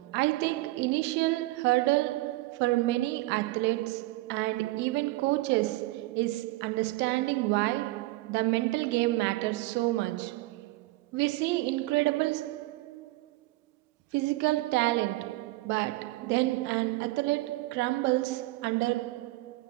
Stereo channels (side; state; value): left; quieter; 19.7 dB